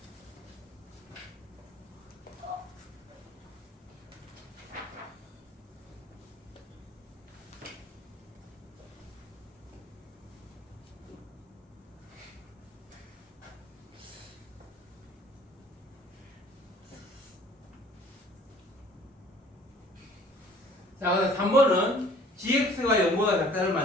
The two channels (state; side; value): normal; both; correlation 0.53